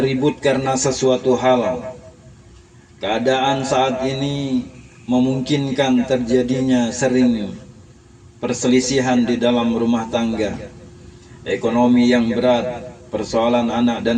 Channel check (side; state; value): both; identical; correlation 1.00